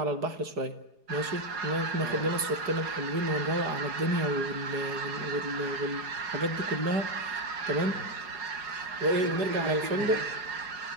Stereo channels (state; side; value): late; left; 4.8 ms